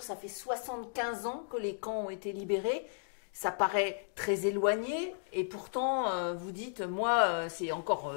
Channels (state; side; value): silent; right; digital silence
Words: ça fait 75 ans que les camps ont été libérés. Ça paraît très éloigné et pourtant, vous dites, moi, c'est encore